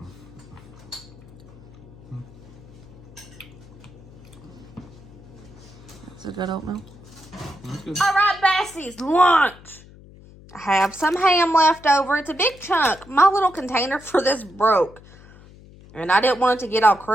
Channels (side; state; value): left; noise; hum, 21 dB below the sound